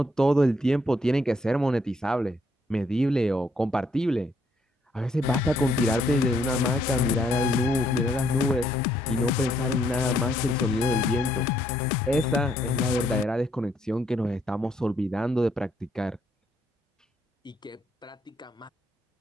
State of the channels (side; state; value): both; normal; correlation 0.70